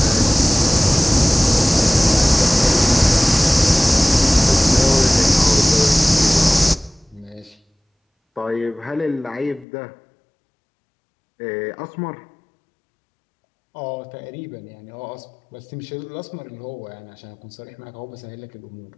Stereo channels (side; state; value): right; drops out; at 9.7 s